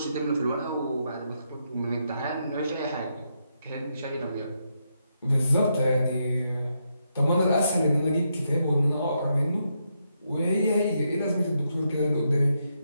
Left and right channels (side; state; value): both; inverted; correlation -0.81